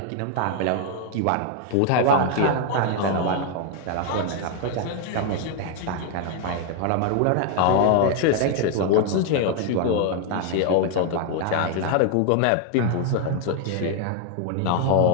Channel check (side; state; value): both; different; correlation 0.00